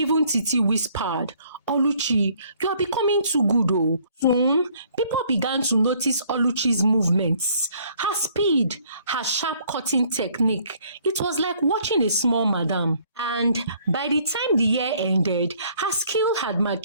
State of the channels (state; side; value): inverted; both; correlation -0.62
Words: Titi whispered, "Oluchi, you are becoming too good." Soon, people began to notice Oluchi's movements, her speed, her sharp cutting technique. It was like watching a small madam. And by the time the year ended, her skill had